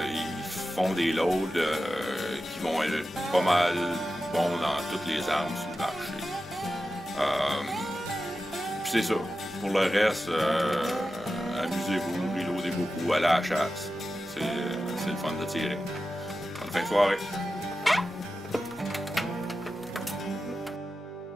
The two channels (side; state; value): both; normal; correlation 0.92